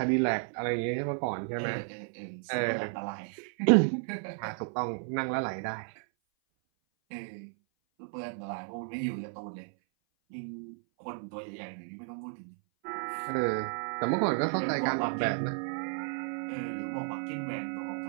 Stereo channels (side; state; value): left; silent; 56 dB below the other